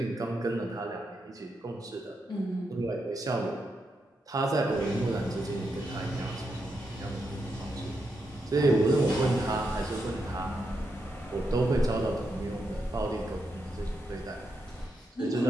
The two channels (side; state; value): both; normal; correlation 0.84